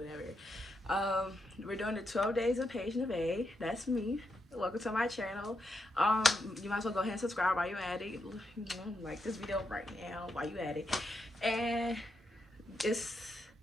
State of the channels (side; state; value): both; normal; correlation 0.82